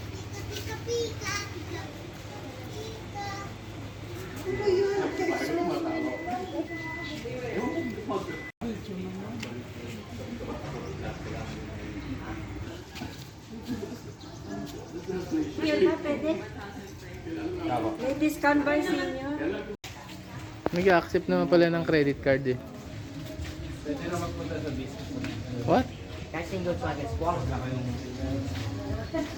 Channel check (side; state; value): both; identical; correlation 1.00